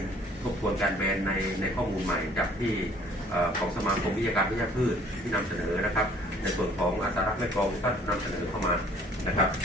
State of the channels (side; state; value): both; normal; correlation 0.56